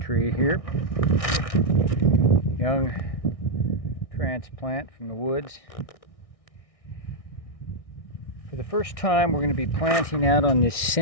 tree here, young transplant from the woods. For the first time, we're going to be planting out on this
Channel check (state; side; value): late; right; 1.6 ms